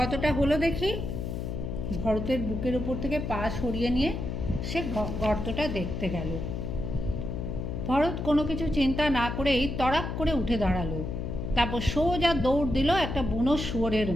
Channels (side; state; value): left; noise; hum, 4 dB below the sound